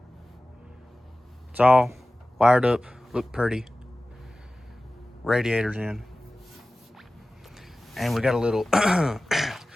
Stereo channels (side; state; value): both; normal; correlation 0.97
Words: It's all wired up, look pretty. Radiator's in. And we got a little,